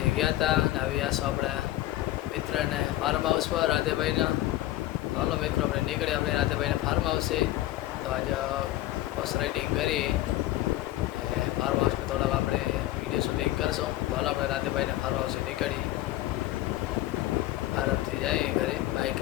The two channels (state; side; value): quieter; right; 15.6 dB